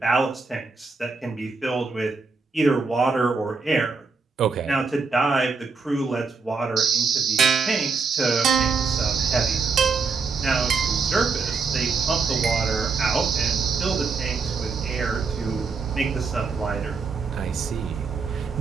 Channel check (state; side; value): quieter; left; 4.7 dB